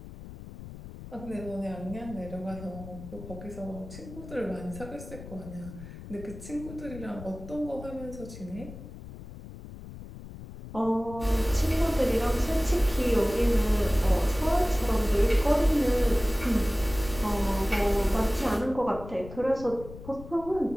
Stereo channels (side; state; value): left; noise; rumble, 14 dB below the sound